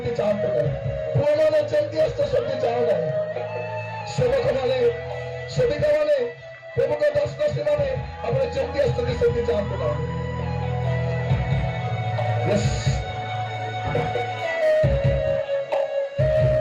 ଚାହାନ୍ତୁ ନାହିଁ। ପୁଅମାନେ ଯେମିତି ଆସିଛ ସେମିତି ଚାହୁଁ ନାହିଁ। ସେବକମାନେ, ସେବିକାମାନେ, ପ୍ରମୁଖ ଦାସଦାସୀମାନେ, ଆପଣ ଯେମିତି ଆସିଛନ୍ତି ସେମିତି ଚାହାନ୍ତୁ ନାହିଁ।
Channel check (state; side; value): identical; both; correlation 1.00